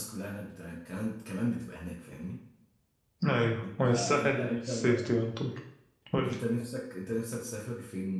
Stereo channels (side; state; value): both; identical; correlation 1.00